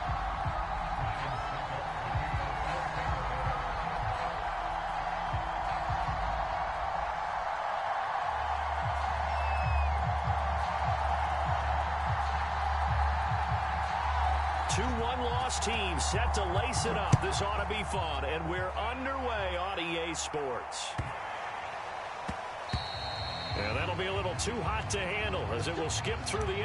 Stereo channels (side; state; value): both; identical; correlation 1.00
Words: 2-1 team set to lace it up. This ought to be fun, and we're underway on EA Sports. And that'll be a little too hot to handle as it will skip through the